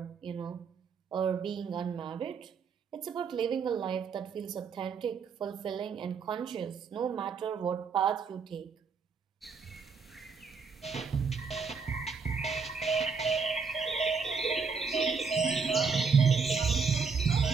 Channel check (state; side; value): quieter; left; 5.4 dB